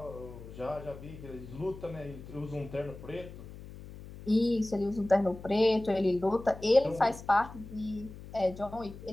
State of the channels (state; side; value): noise; left; hum, 14 dB below the sound